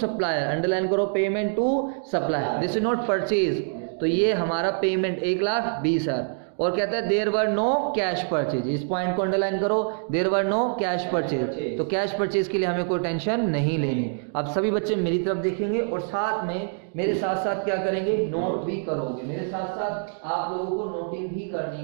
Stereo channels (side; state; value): left; silent; digital silence